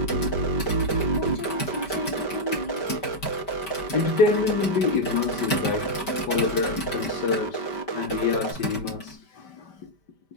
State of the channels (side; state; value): right; late; 5.1 ms